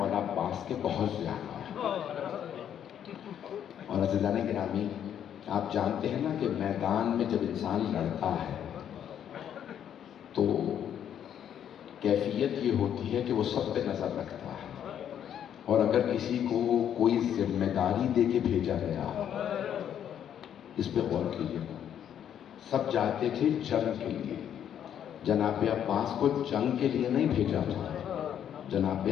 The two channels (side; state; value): right; quieter; 9.5 dB